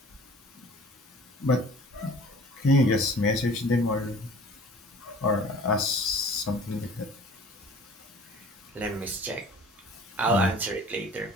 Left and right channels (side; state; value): both; normal; correlation 0.47